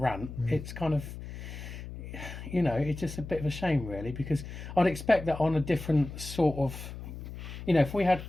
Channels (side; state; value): left; noise; hum, 10 dB below the sound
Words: it's kind of, it's just a bit of a shame, really, because I'd expect that on a different sort of, if we had